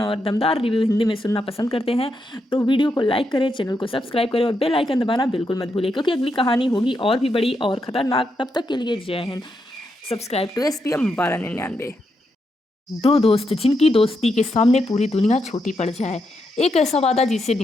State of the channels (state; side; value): normal; both; correlation 0.82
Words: और दमदार रिव्यू हिंदी में सुनना पसंद करते हैं तो वीडियो को लाइक करें, चैनल को सब्सक्राइब करें और बेल आइकन दबाना बिल्कुल मत भूलिए, क्योंकि अगली कहानी होगी और भी बड़ी और खतरनाक। तब तक के लिए जय हिंद। Subscribe to SPM 1299। दो दोस्त जिनकी दोस्ती के सामने पूरी दुनिया छोटी पड़ जाए। एक ऐसा वादा जिसे